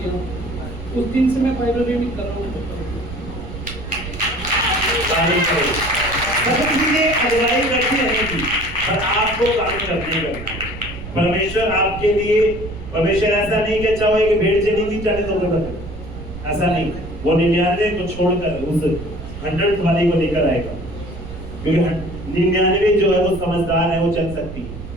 उस दिन से मैं बाइबल रीडिंग कर रहा हूँ। सब चीजें अगुवाई करती रहने की, पर आपको काम करने करना। परमेश्वर आपके लिए, परमेश्वर ऐसा नहीं कि चाहे कि भेड़ चली गई 40 होकर बदल, ऐसा नहीं। वो 99 को छोड़कर उस 100th वाली को लेकर आएगा, क्योंकि 99 जो है वो समझदार है, वो चल सकती है।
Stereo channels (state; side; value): noise; right; rumble, 11 dB below the sound